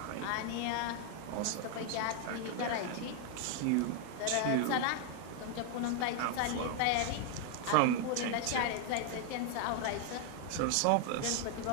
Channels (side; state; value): both; different; correlation 0.00